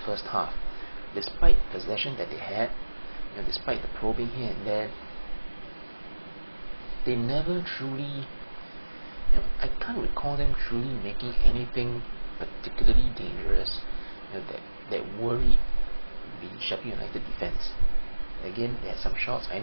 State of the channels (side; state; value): both; inverted; correlation -1.00